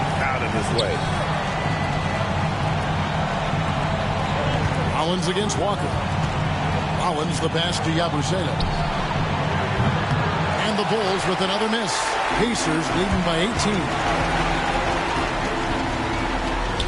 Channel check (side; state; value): both; identical; correlation 1.00